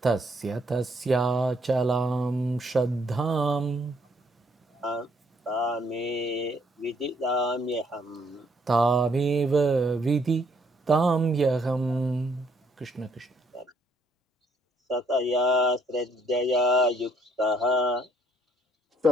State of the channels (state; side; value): normal; both; correlation 0.67